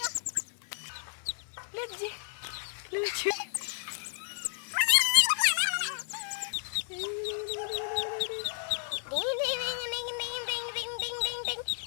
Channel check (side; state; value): right; silent; digital silence